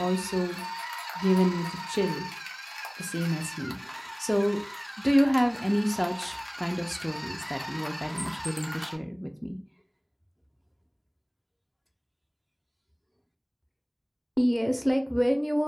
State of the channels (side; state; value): both; identical; correlation 1.00